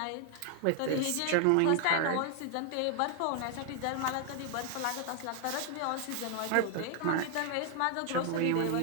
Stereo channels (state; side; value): different; both; correlation 0.00